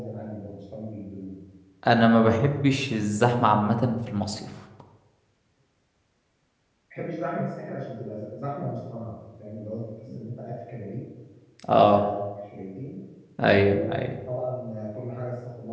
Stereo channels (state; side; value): identical; both; correlation 1.00